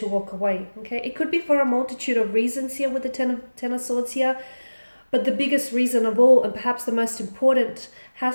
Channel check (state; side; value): inverted; both; correlation -1.00